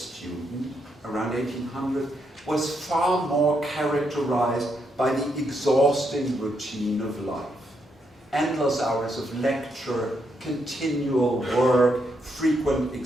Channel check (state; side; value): normal; both; correlation 0.79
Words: around 1800 was far more characterized by the exhausting routine of life. Endless hours of lecture, continual work, frequent